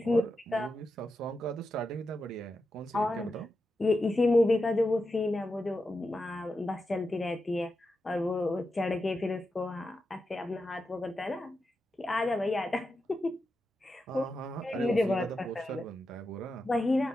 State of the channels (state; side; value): normal; both; correlation 0.89